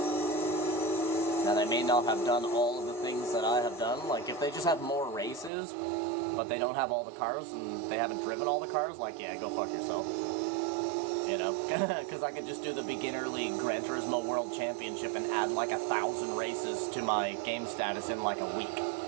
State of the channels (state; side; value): drops out; left; at 5.5 s